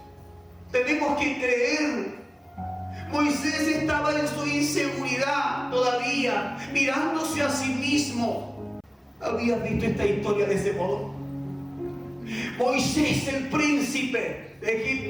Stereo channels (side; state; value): both; identical; correlation 1.00